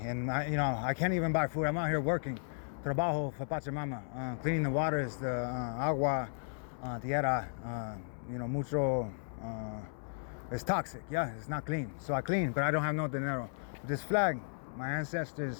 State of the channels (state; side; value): silent; right; 55 dB below the other